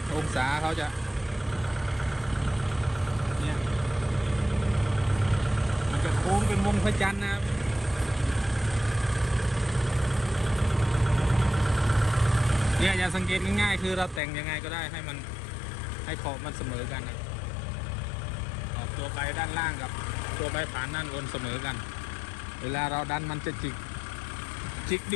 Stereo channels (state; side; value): drops out; right; at 14.2 s